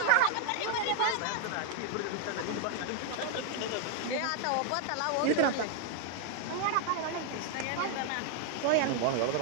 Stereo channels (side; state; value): both; different; correlation 0.00